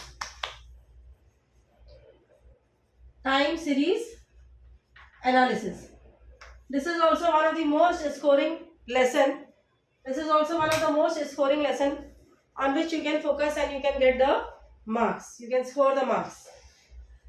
Time series analysis. This is also one of the most scoring lesson. This is also one of the most scoring lesson on which you can focus and you can get the marks. You can score the marks.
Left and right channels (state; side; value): identical; both; correlation 1.00